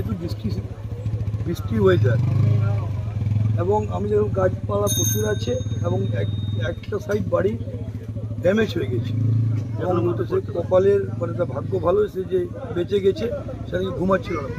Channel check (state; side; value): identical; both; correlation 1.00